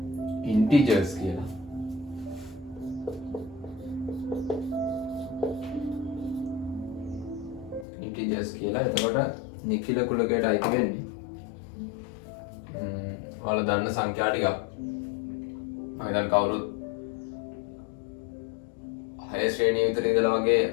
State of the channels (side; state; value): right; drops out; at 7.9 s